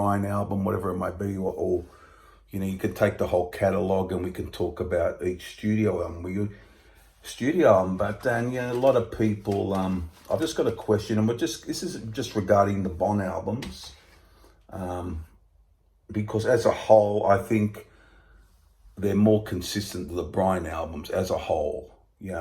album, whatever it might be, or you can take the whole catalogue and we can talk about each studio album. But then a lot of people. I've just got a question, and this is just regarding the Bon albums, because as a whole, I think they're more consistent than the Brian albums as a whole.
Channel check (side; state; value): both; identical; correlation 1.00